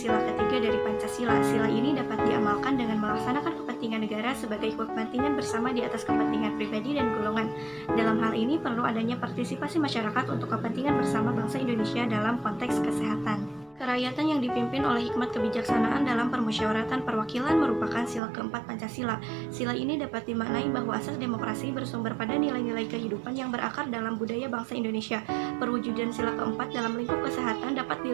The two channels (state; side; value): drops out; left; at 18.2 s